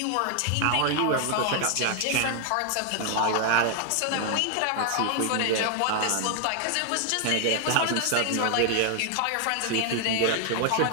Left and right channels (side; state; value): both; different; correlation 0.00